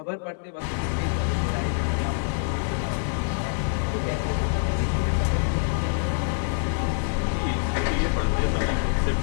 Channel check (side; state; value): right; silent; 61 dB below the other